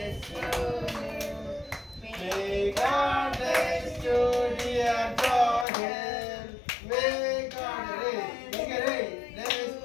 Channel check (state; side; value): drops out; right; at 5.7 s